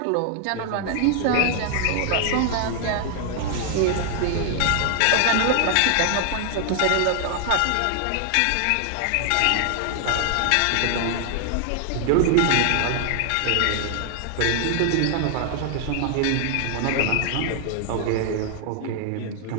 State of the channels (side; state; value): both; different; correlation 0.00